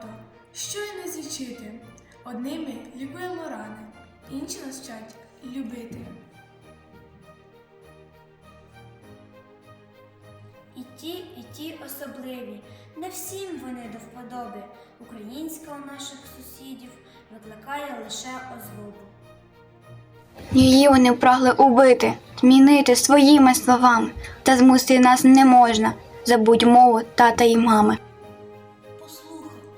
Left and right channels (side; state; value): both; identical; correlation 1.00